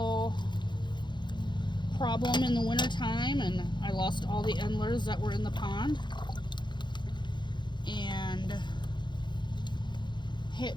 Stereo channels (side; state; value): right; late; 0.22 ms